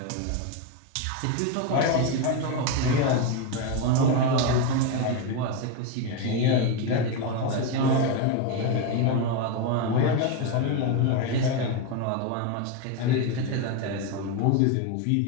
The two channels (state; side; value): different; both; correlation 0.03